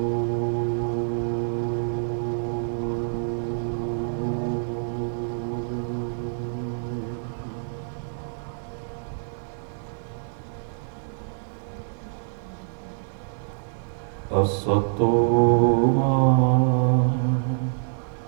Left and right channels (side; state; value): left; silent; digital silence